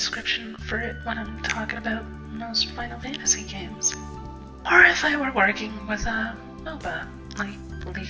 for it when I'm talking about most Final Fantasy games. Or if I were working with a MOBA, like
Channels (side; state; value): both; identical; correlation 1.00